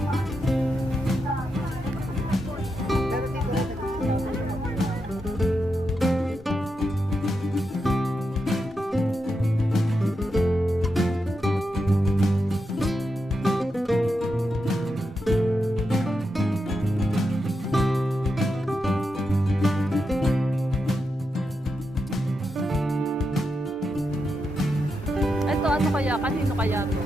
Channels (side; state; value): both; normal; correlation 0.86